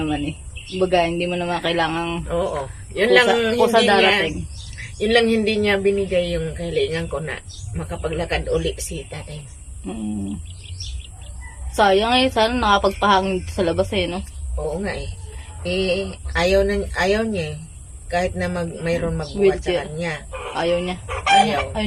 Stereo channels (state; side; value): identical; both; correlation 1.00